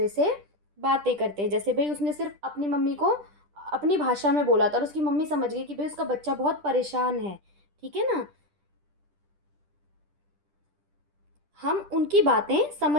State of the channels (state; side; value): late; left; 10 ms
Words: से बातें करते हैं। जैसे भाई उसने सिर्फ अपनी मम्मी को अपनी भाषा में बोला था और उसकी मम्मी समझ गई कि भाई उसका बच्चा बहुत परेशान है। ठीक है ना, हम उनकी बातें